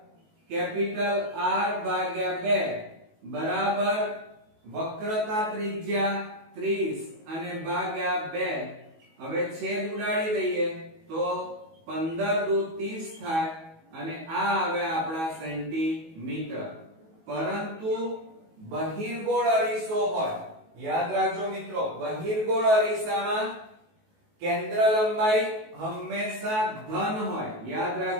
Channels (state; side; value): late; left; 19 ms